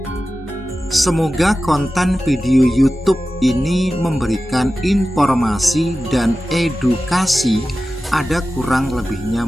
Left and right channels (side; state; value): both; normal; correlation 0.94